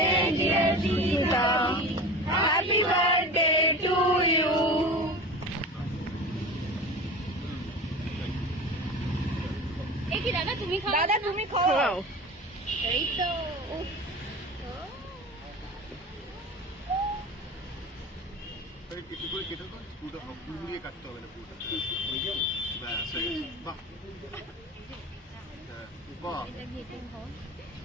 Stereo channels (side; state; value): both; normal; correlation 0.33